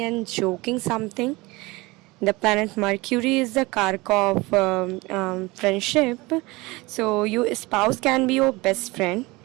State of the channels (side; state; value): left; quieter; 22.8 dB